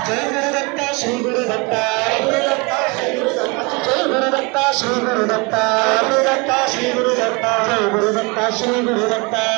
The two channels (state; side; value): quieter; left; 28.6 dB